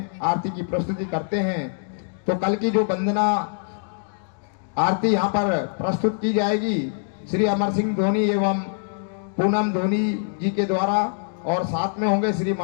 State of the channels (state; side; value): silent; right; digital silence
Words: आरती की प्रस्तुति करते हैं। तो कल की जो वंदना आरती यहाँ पर प्रस्तुत की जाएगी श्री अमर सिंह धोनी एवं पूनम धोनी जी के द्वारा, और साथ में होंगे श्री